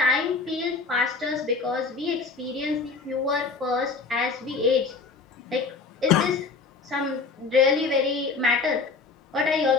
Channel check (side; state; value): right; quieter; 4.5 dB